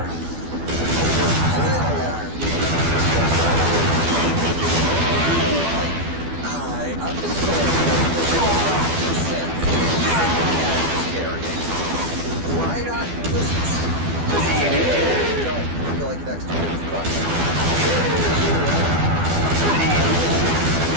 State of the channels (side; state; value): left; late; 12 ms